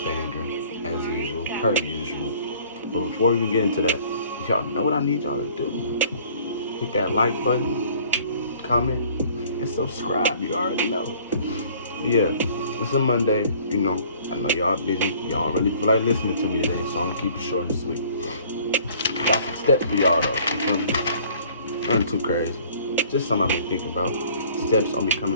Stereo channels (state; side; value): inverted; both; correlation -0.54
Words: banger, as usual, per usual. But before we even get into that, y'all know what I need y'all to do. Hit that like button, comment, and subscribe. You already know. Yeah, it's a Monday, I know y'all busy. Y'all don't really feel like listening to me today, so I'm gonna keep it short and sweet. Got some steps for y'all though. You feel me? Nothing too crazy. Just something I've been thinking about. Steps on